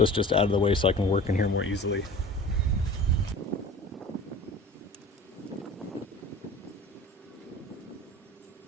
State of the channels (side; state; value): both; normal; correlation 0.40